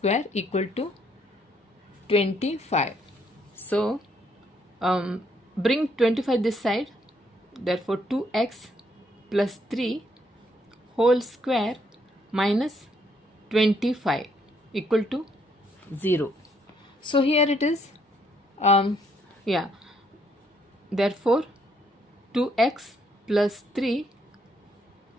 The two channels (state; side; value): normal; both; correlation 0.70